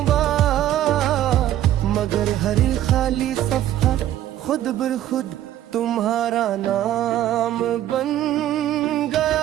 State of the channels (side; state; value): left; quieter; 12.5 dB